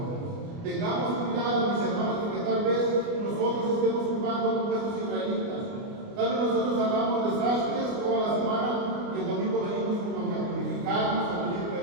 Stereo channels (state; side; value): late; left; 29 ms